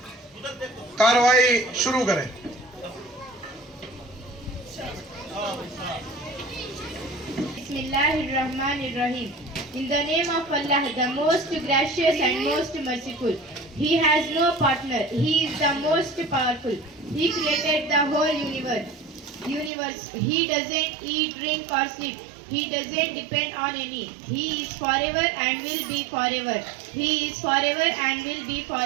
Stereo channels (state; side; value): drops out; left; at 19.7 s